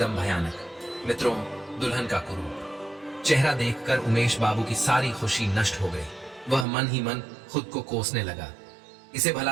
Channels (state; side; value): drops out; left; at 6.7 s